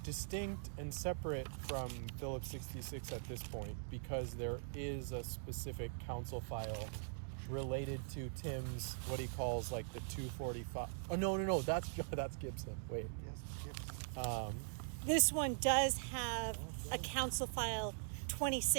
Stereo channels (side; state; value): left; silent; digital silence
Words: distinct and separate from Phillips 66 at this point because there is a specific council file related to Tim's, what he calls like the 245. Oh, no. That's Gibson. Wait. Yes. This one does have a council file